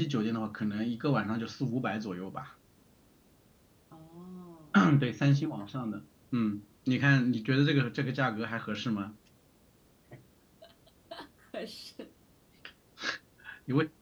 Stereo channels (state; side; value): identical; both; correlation 1.00